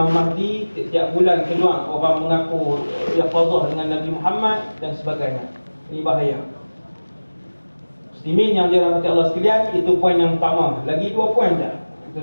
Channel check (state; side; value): inverted; both; correlation -1.00